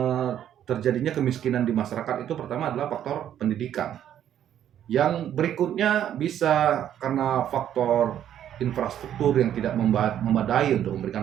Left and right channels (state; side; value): quieter; left; 10.5 dB